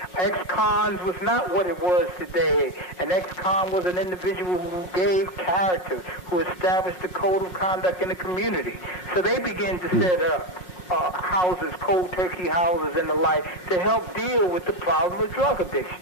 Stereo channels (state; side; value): late; right; 5.7 ms